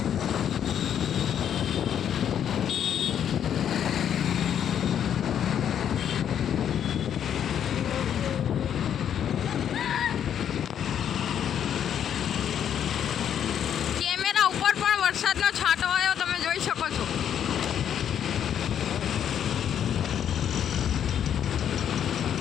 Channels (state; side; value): quieter; right; 9.2 dB